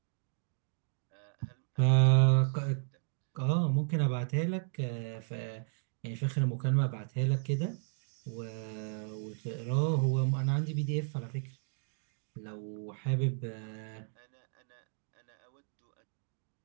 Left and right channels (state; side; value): silent; left; digital silence